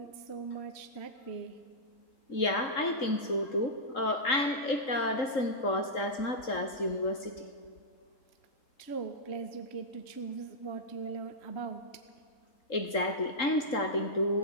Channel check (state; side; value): late; right; 3.8 ms